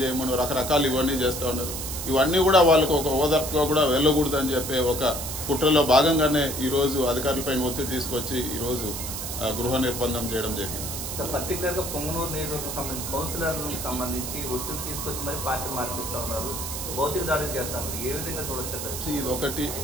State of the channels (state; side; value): noise; right; hiss, 6 dB below the sound